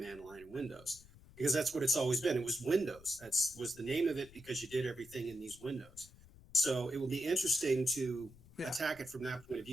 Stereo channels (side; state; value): left; noise; rumble, 22 dB below the sound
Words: line in Windows. Because that's what it's always been. It was Windows. That was the name of it because you did everything in these windows. So it will be interesting to attack it from that point of